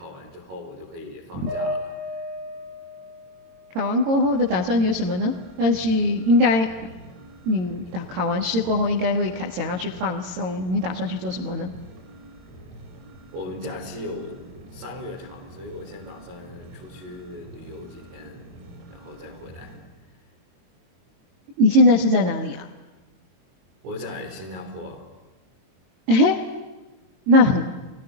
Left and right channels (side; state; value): left; late; 22 ms